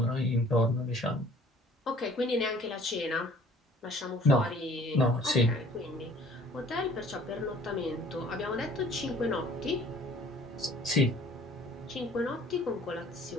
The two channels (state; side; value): normal; both; correlation 0.53